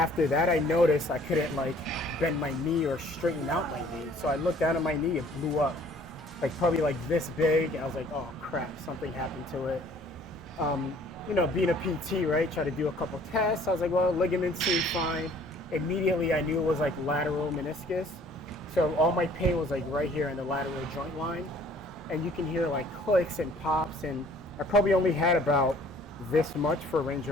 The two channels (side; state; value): both; normal; correlation 0.55